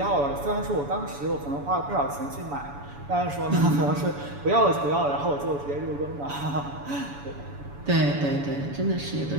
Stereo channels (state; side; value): late; left; 7.0 ms